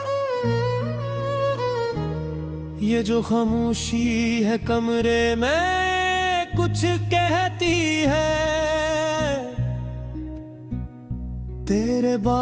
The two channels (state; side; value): identical; both; correlation 1.00